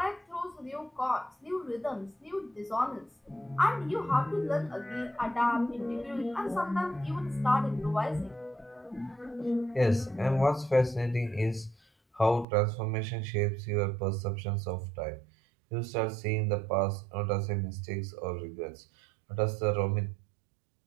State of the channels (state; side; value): drops out; left; at 12.5 s